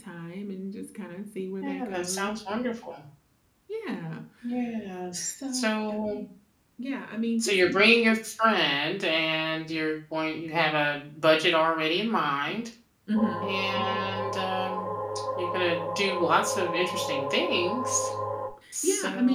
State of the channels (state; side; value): identical; both; correlation 1.00